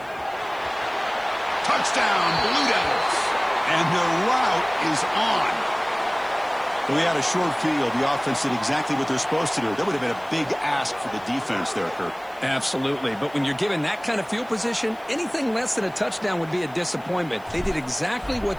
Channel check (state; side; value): noise; right; hiss, 27 dB below the sound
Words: Touchdown, Blue Devils. And the route is on. We had a short field. The offense did exactly what they're supposed to do. That would have been a big ask for the defense there, Kurt. Absolutely. But when you're given that kind of field position, anything less than a touchdown would be a disappointment. They did exactly